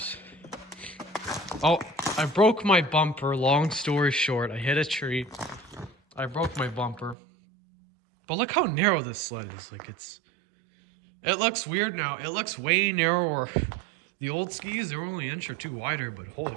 Oh, I broke my bumper. Long story short, I hit a tree. I broke my bumper. But look how narrow this sled is. Like it looks weird now. It looks way narrower. The old skis, they're only an inch or two wider, but holy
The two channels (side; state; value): left; drops out; at 7.2 s